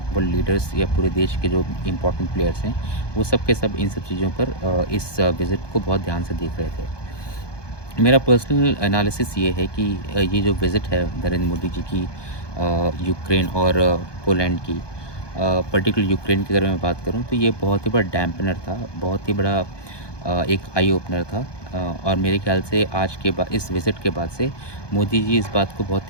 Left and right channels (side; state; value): right; late; 1.2 ms